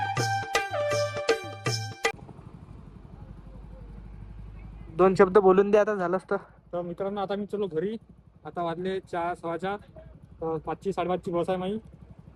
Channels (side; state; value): both; identical; correlation 1.00